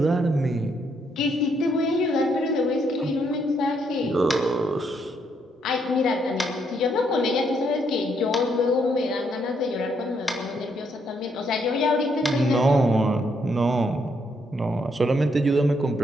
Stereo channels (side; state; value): both; normal; correlation 0.74